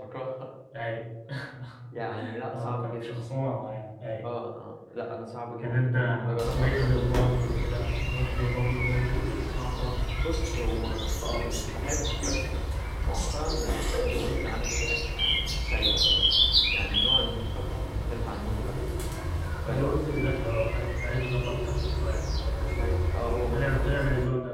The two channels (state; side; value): identical; both; correlation 1.00